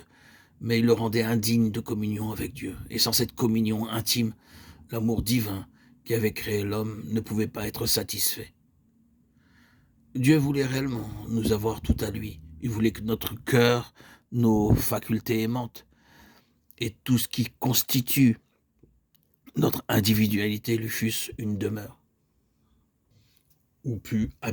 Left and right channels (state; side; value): identical; both; correlation 1.00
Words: mais il le rendait indigne de communion avec Dieu. Et sans cette communion intime, l'amour divin qui avait créé l'homme ne pouvait pas être satisfait. Dieu voulait réellement nous avoir tout à lui. Il voulait que notre cœur, nos facultés aimantes et tout ce qui constitue notre individualité lui fussent une demeure, où put